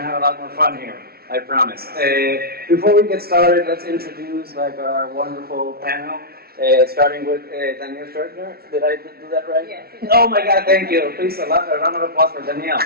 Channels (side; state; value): left; late; 0.44 ms